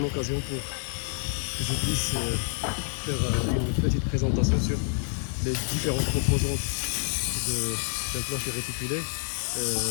occasion pour que je puisse faire une petite présentation sur les différentes composantes d'un plancher réticulé,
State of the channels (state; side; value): silent; right; 56 dB below the other